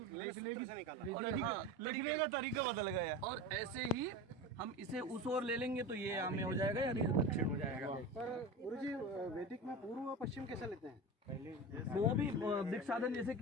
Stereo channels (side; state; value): both; normal; correlation 0.28